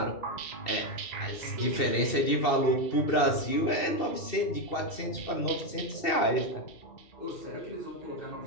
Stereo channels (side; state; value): right; late; 2.7 ms